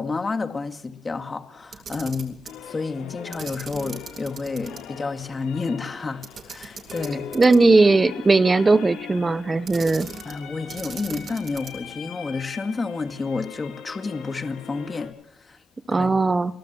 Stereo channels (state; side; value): normal; both; correlation 0.93